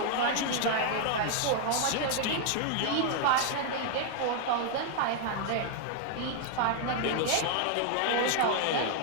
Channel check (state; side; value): different; both; correlation 0.00